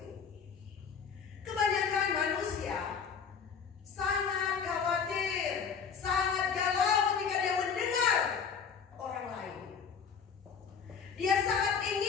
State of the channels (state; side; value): quieter; right; 6.4 dB